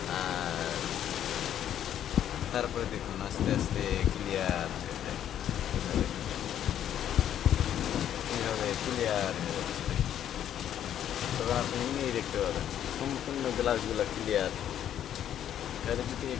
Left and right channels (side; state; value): right; quieter; 10.4 dB